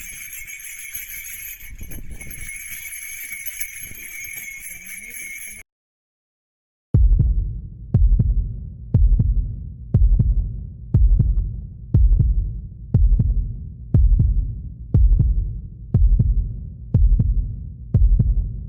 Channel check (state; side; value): identical; both; correlation 1.00